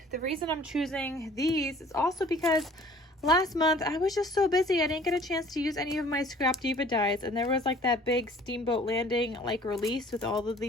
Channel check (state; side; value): normal; both; correlation 0.52